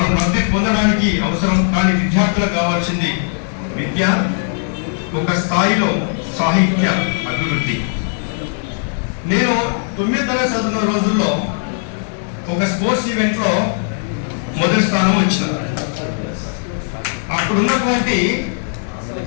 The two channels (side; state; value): right; silent; 67 dB below the other